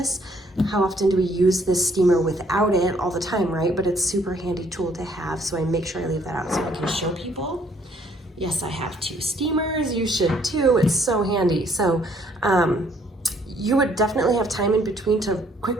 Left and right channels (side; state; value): both; normal; correlation 0.65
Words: How often do we use this steamer without it? All the time, right? But it's a super handy tool to have, so I make sure I leave that out so I can show people. Yes, I have 2 steamers. You should too. It's so handy. So you would definitely have time in between to